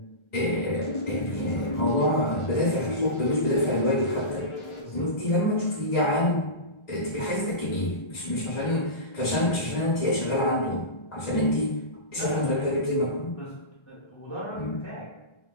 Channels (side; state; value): right; late; 1.3 ms